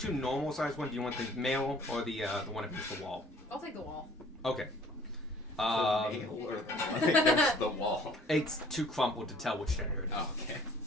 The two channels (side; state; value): both; normal; correlation 0.54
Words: normal sized ones. Do you want the male or the one against the wall? I'll take the wall. Okay. nail or the one against the wall? It's too crumpled to tell which gender it is. Oh, okay.